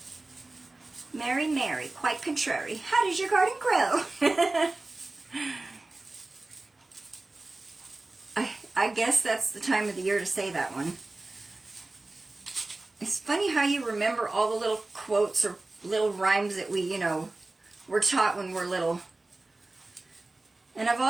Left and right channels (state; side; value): quieter; left; 3.0 dB